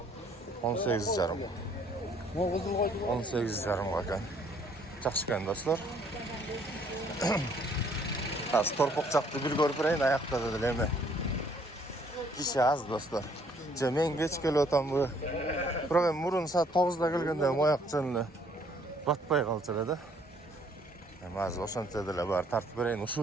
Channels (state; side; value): normal; both; correlation 0.63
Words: 18,5. Могу кызыл койду. 18,5 экен. Жакшы экен достор. Азыр торпок жакты бир көрүп берейин, аякта деле эме. Киши аз достор. Же мен кеч келип атамбы. Бирок эми мурун саат 9да келгенде мояк жөн эле батпай калчу эле да. Эми азыр ошончо деле бар тартып берейин,